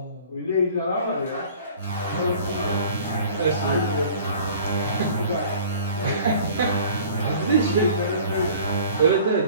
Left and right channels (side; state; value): both; inverted; correlation -0.48